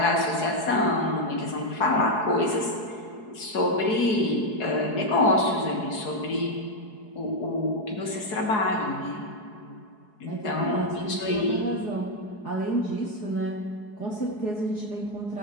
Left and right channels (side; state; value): right; late; 4.7 ms